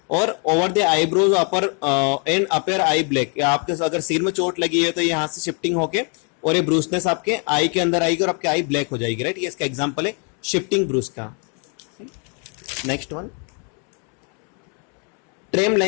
और over the eyebrows upper and upper I black. आपके अगर सिर में चोट लगी है तो यहाँ से शिफ्टिंग होके और ये ब्रूसनेस आपके आई के अंदर आएगी और आपके आई ब्लैक हो जाएगी, राइट? ये इसका एग्जाम्पल है शिफ्टिंग ब्रूस का। Next one tram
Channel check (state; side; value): quieter; right; 38.2 dB